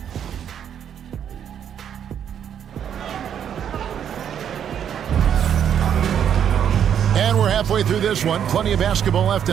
Halfway through this one, plenty of basketball left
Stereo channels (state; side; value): quieter; left; 8.9 dB